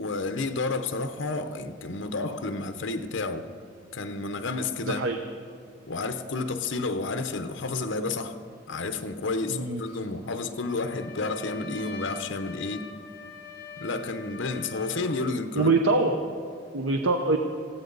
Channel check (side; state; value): both; normal; correlation 0.10